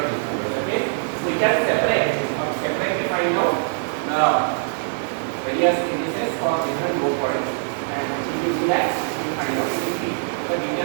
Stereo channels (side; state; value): left; silent; digital silence